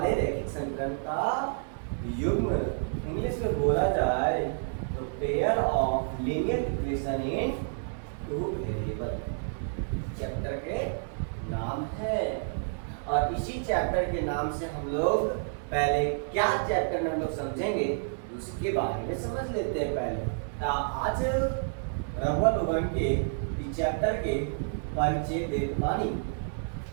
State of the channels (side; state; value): left; silent; digital silence